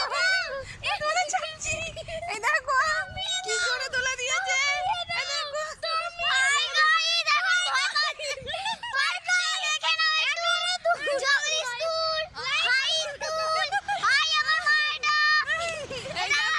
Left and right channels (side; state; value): both; identical; correlation 1.00